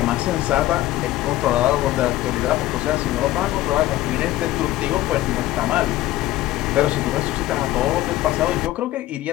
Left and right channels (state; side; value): quieter; right; 15.8 dB